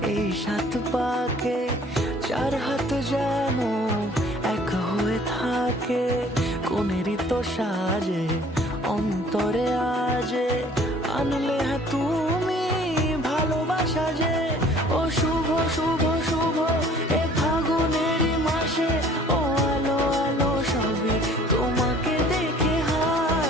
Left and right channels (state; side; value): normal; both; correlation 0.53